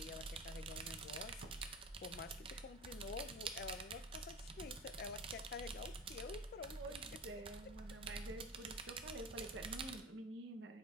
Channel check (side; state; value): both; normal; correlation 0.32